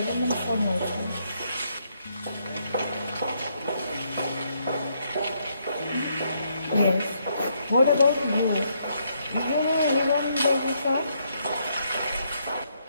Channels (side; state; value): both; inverted; correlation -0.75